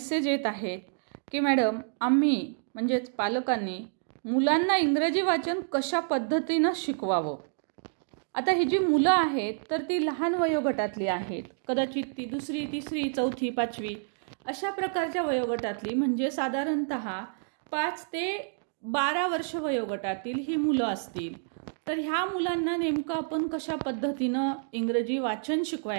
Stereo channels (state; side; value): silent; left; digital silence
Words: येत आहेत की मॅडम आम्ही म्हणजेच पालकांनी मुलांना इंग्रजी वाचन कशा पद्धतीनं शिकवावं. आता ही जी मुलं आहेत तर ती लहान वयोगटातली आहेत, कदाचित ती 2री, 3री, 4थी, 5वी अशा प्रकारच्या वयोगटातली, म्हणजे साधारणतः 5 ते 12 वर्ष वयोगटातील ही मुलं असतील. तर ह्या मुलांना नेमकं आपण कशा पद्धतीनं इंग्रजी वाचन